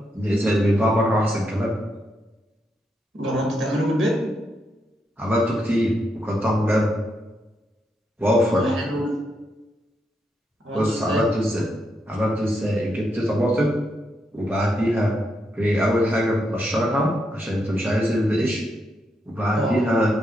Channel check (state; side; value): normal; both; correlation 0.81